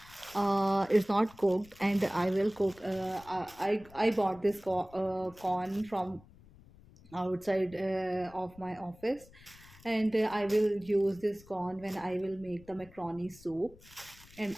not cooked, and I will cook. I bought this corn from outside of my office, and I will use this corn when I will make the macaroni soup, and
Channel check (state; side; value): noise; left; rumble, 23 dB below the sound